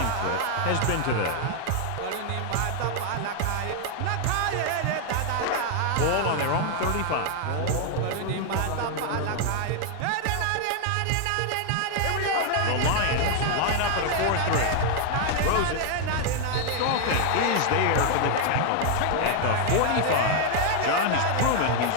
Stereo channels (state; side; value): different; both; correlation 0.00